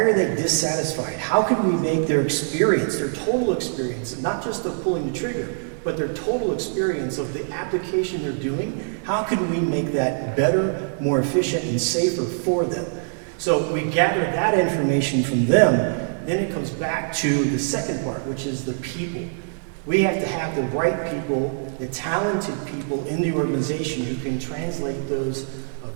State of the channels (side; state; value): left; silent; digital silence